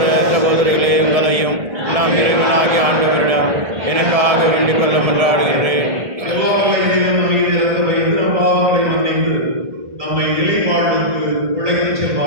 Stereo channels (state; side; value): late; left; 1.7 ms